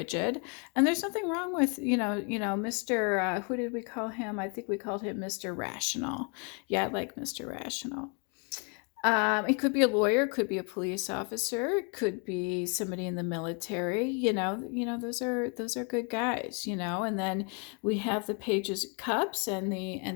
and there's nothing wrong with Mr. Who did we call him? I think we called him Mr. Rational. Yeah, I like Mr. Rational. It could be a lawyer, could be a police officer, could be somebody in the military. Those are good guys. And then we have the Pages of Cups and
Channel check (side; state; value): right; quieter; 36.4 dB